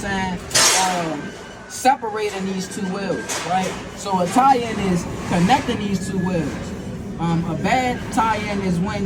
Separating these two wheels, right? So a tie-in is connecting these two wheels. A bad tie-in is when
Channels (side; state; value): both; identical; correlation 1.00